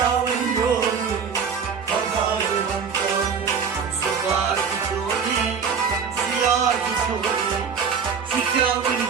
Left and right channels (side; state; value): left; quieter; 6.3 dB